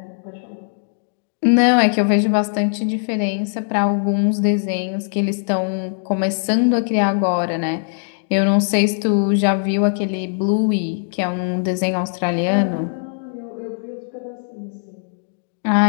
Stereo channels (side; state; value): right; silent; digital silence